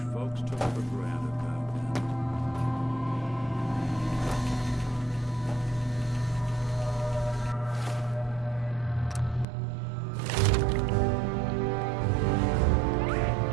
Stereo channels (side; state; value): left; drops out; at 9.5 s